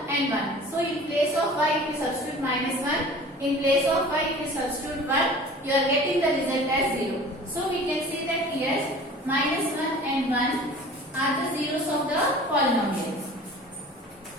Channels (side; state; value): both; normal; correlation 0.43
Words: and 1. So in place of y, if you substitute minus 1, in place of y, if you substitute 1, you are getting the result as 0. So we can say that here minus 1 and 1 are the zeros of the polynomial.